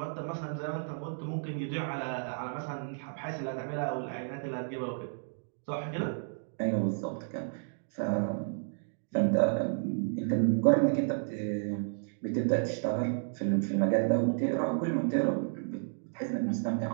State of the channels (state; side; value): silent; left; digital silence